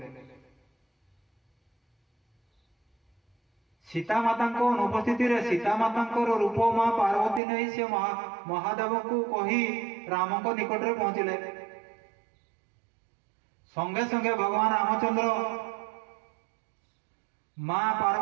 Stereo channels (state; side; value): drops out; left; at 7.4 s